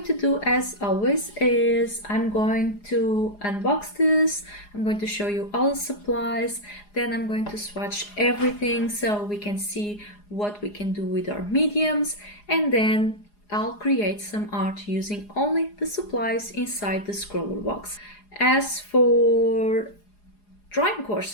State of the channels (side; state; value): right; late; 4.8 ms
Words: to do, as always, is I'm going to unbox this. I'm going to show you all the supplies. Then I'm going to swatch everything so we can see what we can do with our mediums. And then I'll create some art using only the supplies inside the scroller box. As for drawing